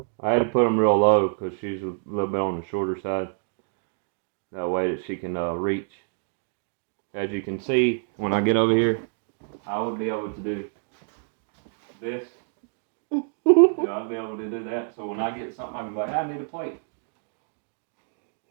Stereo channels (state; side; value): silent; left; digital silence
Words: I had to put them real low because she's a little bit on the shorter side. That way that she can reach. As you can see, when I get over here, I would be able to do this. I'd be able to do that. So when I get something, I can be like, I need a plate.